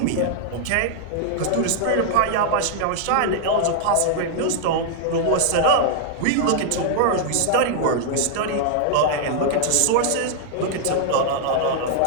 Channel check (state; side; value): different; both; correlation -0.01